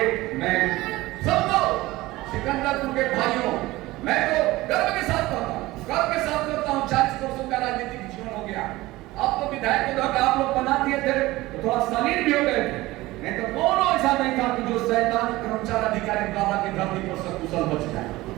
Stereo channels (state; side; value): quieter; left; 18.8 dB